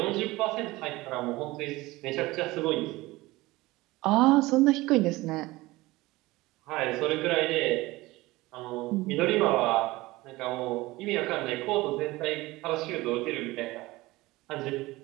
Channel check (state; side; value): quieter; left; 19.9 dB